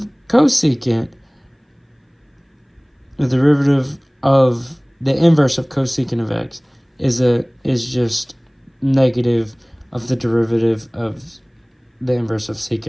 cosecant, the derivative of the inverse of cosecant of x is just negative of the derivative of the inverse of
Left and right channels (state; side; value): identical; both; correlation 1.00